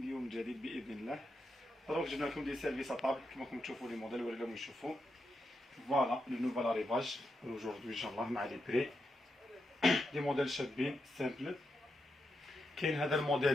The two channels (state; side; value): normal; both; correlation 0.85